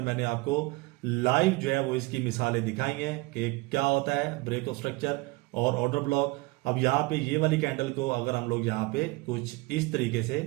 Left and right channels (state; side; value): quieter; left; 23.2 dB